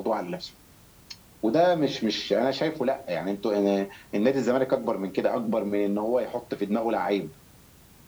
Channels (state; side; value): identical; both; correlation 1.00